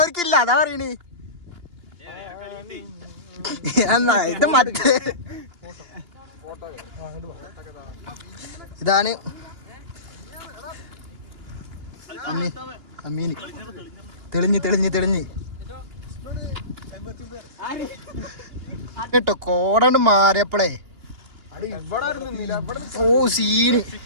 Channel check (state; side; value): late; left; 2.9 ms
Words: അതാ പറയണേ. എന്നാ ഇത് മറ്റേ ഇതാണ് അമ്മീന് തെളിഞ്ഞ് കേട്ടോ കോടണ്ട് മാറിയപ്പോളേ ഓ സീന്.